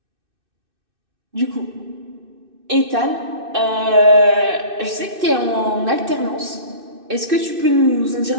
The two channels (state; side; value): late; left; 2.6 ms